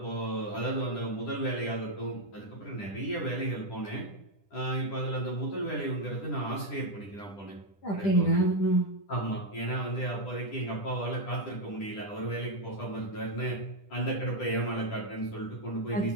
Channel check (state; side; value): late; right; 10 ms